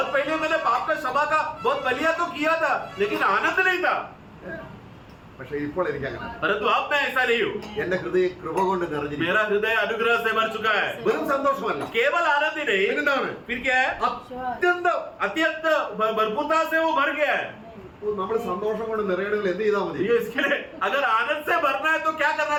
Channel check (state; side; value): identical; both; correlation 1.00